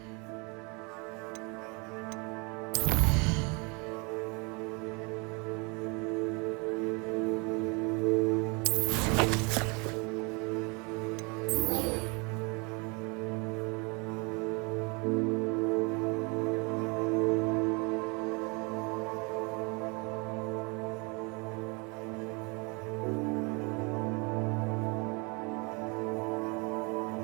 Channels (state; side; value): quieter; left; 30.4 dB